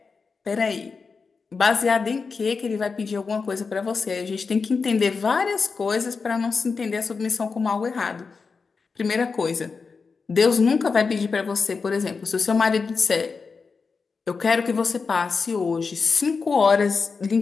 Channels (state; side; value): quieter; right; 4.9 dB